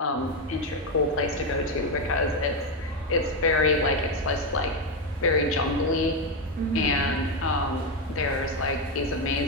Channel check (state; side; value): normal; both; correlation 0.08